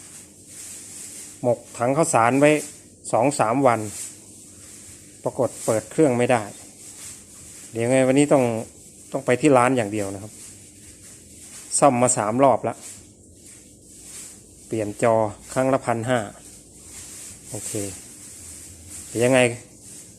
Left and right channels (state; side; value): identical; both; correlation 1.00